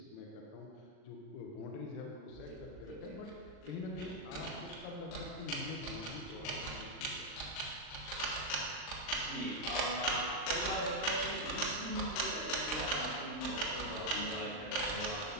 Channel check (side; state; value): right; late; 39 ms